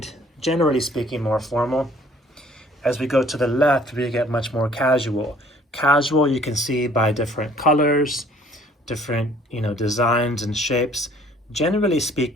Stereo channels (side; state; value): both; normal; correlation 0.56